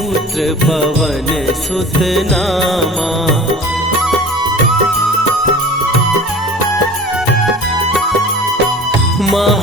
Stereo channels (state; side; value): normal; both; correlation 0.41